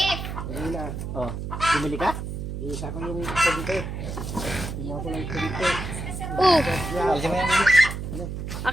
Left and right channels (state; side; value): noise; right; hum, 6 dB below the sound